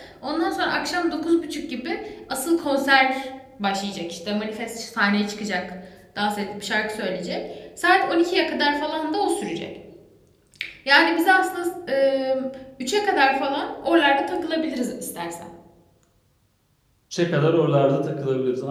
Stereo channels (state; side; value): identical; both; correlation 1.00